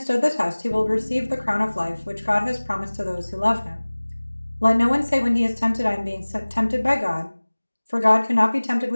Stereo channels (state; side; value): inverted; both; correlation -1.00